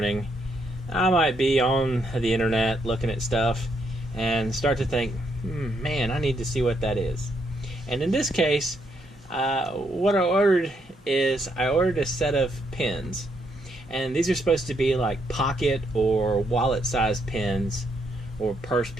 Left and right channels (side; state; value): both; normal; correlation 0.76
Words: I might be on the internet looking at stuff and start to think, man, I need to see what that is. And in this case, what I ordered is I ordered a set of pins. And these are supposed to be like pocket or wallet-sized pins or purse